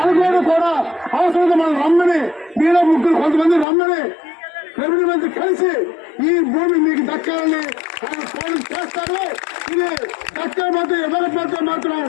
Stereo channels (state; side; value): drops out; right; at 3.7 s